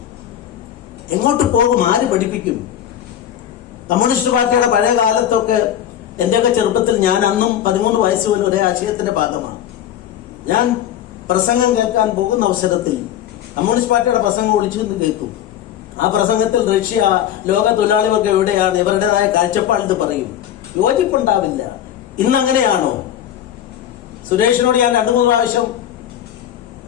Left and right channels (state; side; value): quieter; right; 10.8 dB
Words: എങ്ങോട്ട് പോകും? ആര് പഠിപ്പിക്കും? കമ്മ്യൂണിസ്റ്റ് പാർട്ടിയുടെ പഴയ കാലത്തൊക്കെ എന്റെയൊക്കെ ചെറുപ്പത്തിൽ ഞാൻ അന്നും 13 വയസ്സ് പോലും ഒരേ ആശയത്തിന്റെ ഭാഗമാണ്. ഞാൻ പ്രസംഗം കേൾക്കാൻ പോകുന്ന അവസരത്തിൽ കമ്മ്യൂണിസ്റ്റ് പാർട്ടിയുടെ പ്രസംഗം ഒളിച്ചു നിന്ന് കേൾക്കും. ആ പ്രസംഗത്തിൽ റഷ്യ, ലോക തൊഴിലാളികൾക്ക് എവിടെയാണ്, ഇവരുടേതായ കാഴ്ചപ്പാട് പറയും. യോജിപ്പുണ്ടാവില്ല. ഇന്ന് അങ്ങനെയാണോ? സുരേഷിനോട് ഞാൻ 2-3 പ്രാവശ്യം